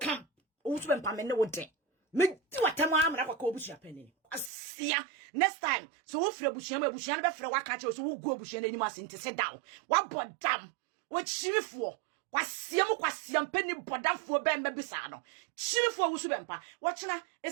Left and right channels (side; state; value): left; drops out; at 4.5 s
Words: o so be pambe ne wo de me ti watam amra kwa obusua panini asia next time so wo frɛ busua ma busua no be frɛ waka kye so wo go busua n'anim ase nte se down wa bodam wo chirifo kwasiam pani bodamfo be mba bisa no chirifo wo so bempa wo kyena